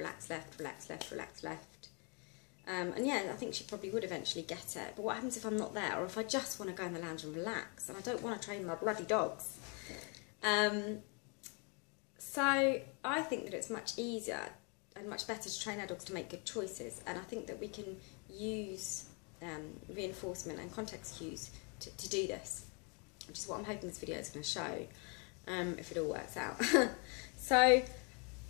left, relax left, relax left. And yeah, I think she probably would eventually get it. But what happens if I'm not there, or if I just want to go in the lounge and relax, and I don't want to train my bloody dogs? So I think that it's much easier and much better to train our dogs to make good choices. And I think that we can use reinforcement and context cues to do this, which is what I'm hoping this video is going to show, if it all works out. So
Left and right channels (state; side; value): quieter; right; 34.8 dB